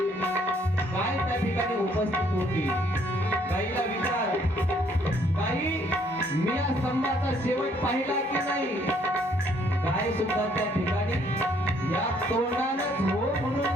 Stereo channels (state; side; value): normal; both; correlation 0.65